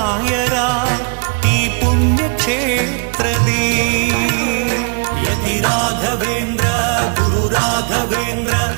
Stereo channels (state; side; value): quieter; left; 36.1 dB